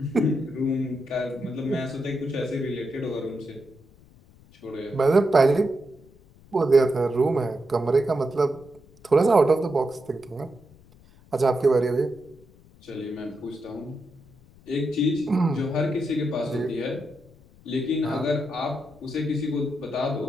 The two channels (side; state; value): left; noise; rumble, 26 dB below the sound